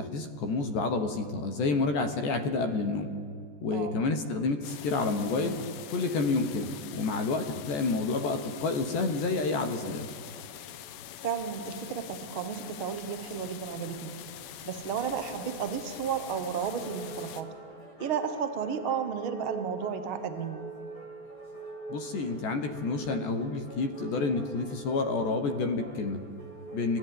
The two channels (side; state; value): right; late; 14 ms